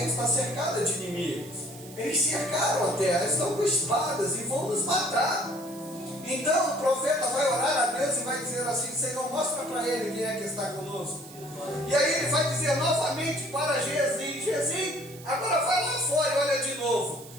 está cercada de inimigos. Eles cercaram a terra, estão com espadas e vão nos matar. Então o profeta vai orar a Deus e vai dizer assim: Senhor, mostra para ele quem é que está conosco. E aí ele vai dizer novamente para Geazi: Geazi, agora vai lá fora e olha de novo.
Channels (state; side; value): noise; right; hiss, 19 dB below the sound